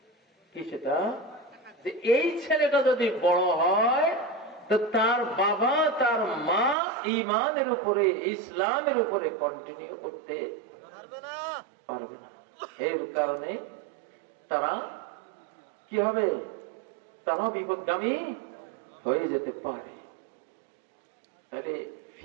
কি সেটা? যে এই ছেলেটা যদি বড় হয় তো তার বাবা তার মা ঈমানের উপরে, ইসলামের উপরে কন্টিনিউ করতে পারবে না। এর কারণে তারা কি হবে? তারা বিপদগামী হয়ে যেতে পারে। তাহলে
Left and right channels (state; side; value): drops out; left; at 6.8 s